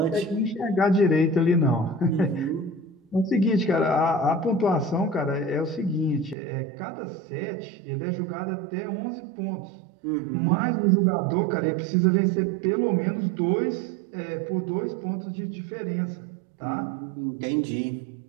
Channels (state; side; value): drops out; left; at 6.4 s